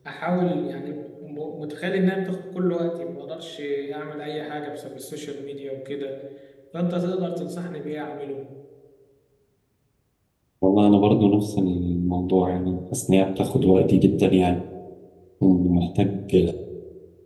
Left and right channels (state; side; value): identical; both; correlation 1.00